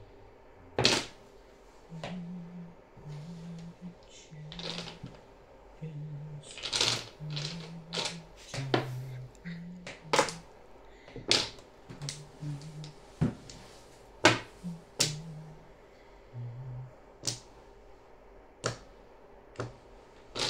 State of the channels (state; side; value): identical; both; correlation 1.00